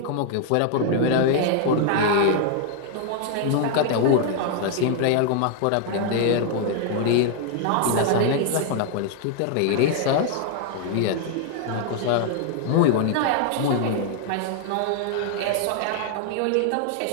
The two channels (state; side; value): different; both; correlation 0.00